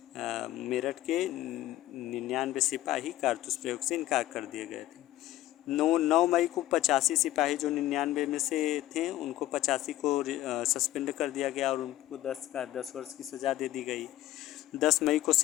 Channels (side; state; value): right; quieter; 14.8 dB